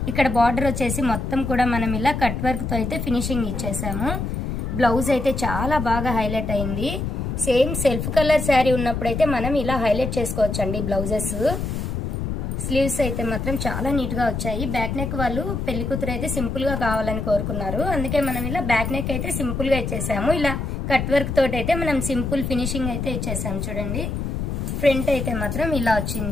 ఇక్కడ బార్డర్ వచ్చేసి మొత్తం కూడా మనం ఇలా కట్ వర్క్తో అయితే ఫినిషింగ్ ఇచ్చేసాము. బ్లౌజ్ అయితే చాలా బాగా హైలైట్ అయింది. సేమ్ సెల్ఫ్ కలర్ శారీ ఉన్నప్పుడైతే మనం ఇలా హైలైట్ చేసుకోవచ్చండి బ్లౌజెస్. స్లీవ్స్ అయితే మాత్రం చాలా నీట్గా వచ్చాయి. బ్యాక్ నెక్ వాళ్ళు పెళ్లి కూతురు అయితే సింపుల్గా కావాలని కోరుకున్నారు. అందుకే మనం ఇలా బ్యాక్ నెక్ అయితే సింపుల్గా ఇచ్చేసాము. ఇలా కట్ వర్క్ తోటి అయితే మనం సింపుల్ ఫినిషింగ్ అయితే ఇచ్చేసాము. చూడండి, ఫ్రంట్ అయితే మాత్రం ఇలా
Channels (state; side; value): noise; left; rumble, 3 dB below the sound